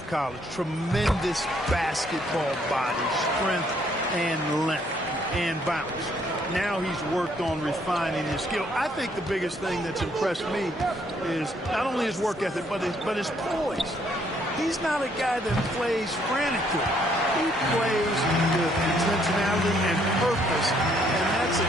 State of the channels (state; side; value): normal; both; correlation 0.68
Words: college. Tremendous basketball body, strength and length and bounce. Now he's worked on refining his skill. I think the biggest thing that's impressed me is not only his work ethic, but his poise. He's not a guy that plays frantically. He plays with intentionality and purpose, and that's a